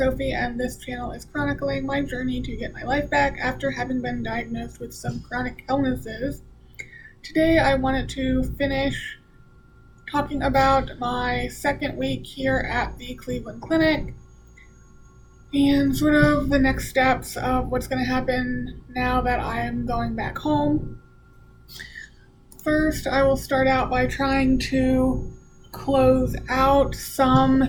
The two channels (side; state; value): both; identical; correlation 1.00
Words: and this channel is chronicling my journey to get my life back after having been diagnosed with some chronic illnesses. Today I wanted to finish talking about my second week here at the Cleveland Clinic and sort of the next steps of what's going to happen now that I am going back home. First, I will start out by trying to close out some